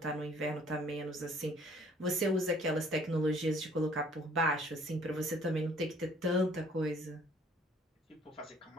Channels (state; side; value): normal; both; correlation 0.58